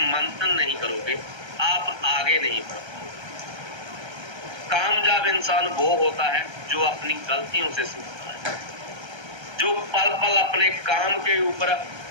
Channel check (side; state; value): left; late; 1.3 ms